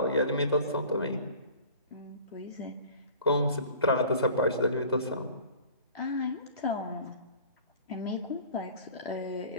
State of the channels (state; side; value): inverted; both; correlation -0.45